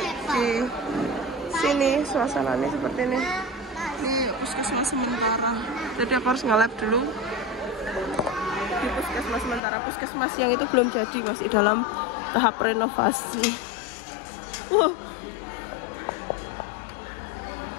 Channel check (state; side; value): drops out; right; at 9.6 s